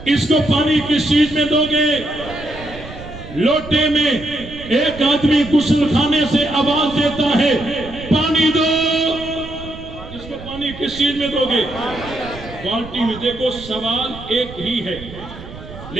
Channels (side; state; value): right; noise; rumble, 14 dB below the sound